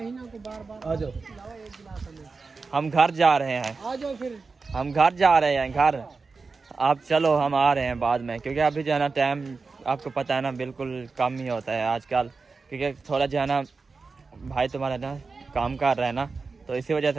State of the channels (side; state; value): left; quieter; 4.4 dB